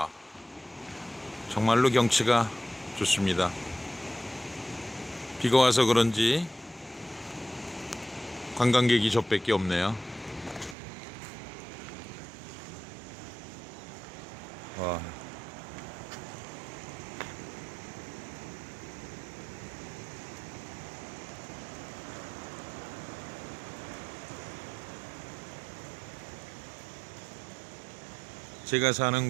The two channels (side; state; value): left; drops out; at 10.8 s